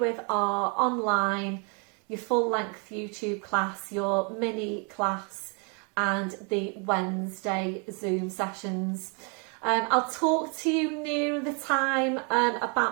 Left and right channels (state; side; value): quieter; left; 36.2 dB